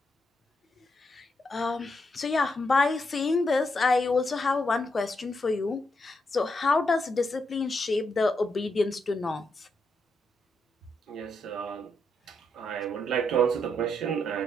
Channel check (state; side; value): normal; both; correlation 0.80